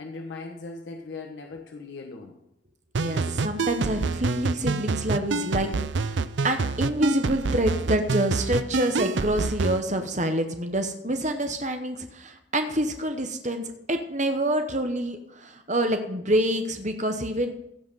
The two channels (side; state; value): both; normal; correlation 0.47